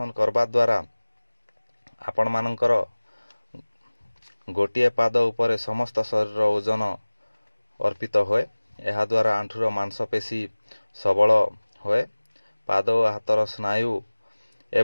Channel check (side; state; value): both; inverted; correlation -1.00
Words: करबा द्वारा आपण मानकर गोटिए पाद उपरे समस्त शरीर ओजन अर्पित होए। यह द्वारा आंठुर मांसपेशी सबल होए। पाद और हाथर स्नायु